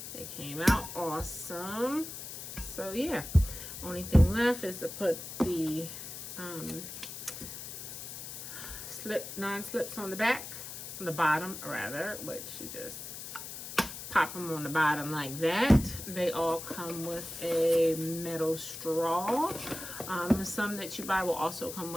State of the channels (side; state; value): left; noise; hiss, 9 dB below the sound